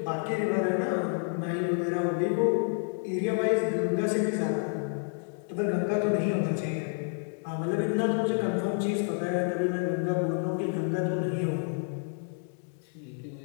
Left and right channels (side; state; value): right; silent; 55 dB below the other